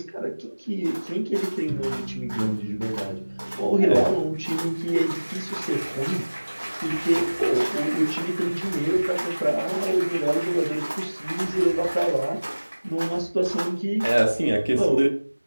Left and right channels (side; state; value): both; inverted; correlation -1.00